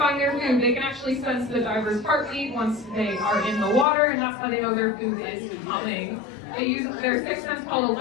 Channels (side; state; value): right; drops out; at 3.9 s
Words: their food? They can actually sense the diver's heartbeat once they are in the water, and that's how they know their food is coming. They use their sixth sense called